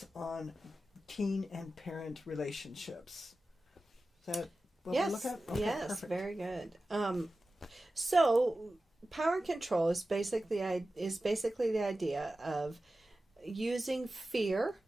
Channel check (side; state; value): both; normal; correlation 0.94